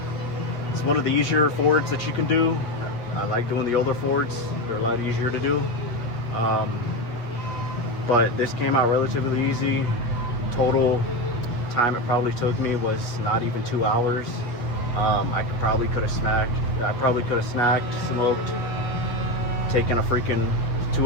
It's one of the easier Fords that you can do. I like doing the older Fords, they're a lot easier to do. But this came out relatively easy. Total time it probably took me was not even 2 hours. I probably could have snacked, smoked, taken a freaking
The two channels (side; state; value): right; late; 8.3 ms